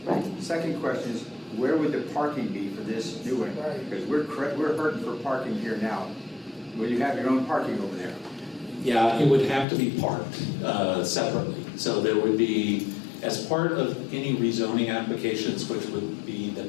Right. Second question is, where would the parking be for this new one? Because we're hurting for parking here now. Will you have your own parking over there? Yeah, it would have to be parked separately. So there would be, as part of any rezoning applications, which would be the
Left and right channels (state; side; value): drops out; right; at 9.7 s